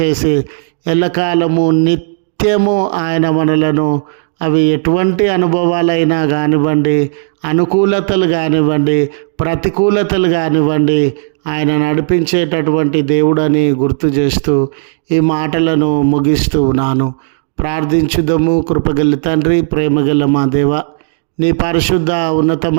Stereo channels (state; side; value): silent; left; digital silence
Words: ఎల్లకాలము నిత్యము ఆయన మనలను, అవి ఎటువంటి అనుభవాలైనా కానివ్వండి, అనుకూలతలు కానివ్వండి, ప్రతికూలతలు కానివ్వండి, ఆయన నడిపించేటటువంటి దేవుడని గుర్తు చేస్తూ ఈ మాటలను ముగిస్తూ ఉన్నాను. ప్రార్థించుదము. కృపగల తండ్రి, ప్రేమగల మా దేవ, నీ పరిశుద్ధ